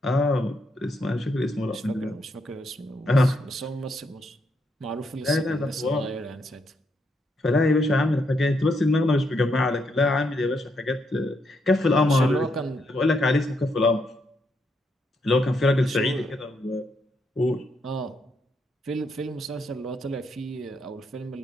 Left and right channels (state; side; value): normal; both; correlation 0.78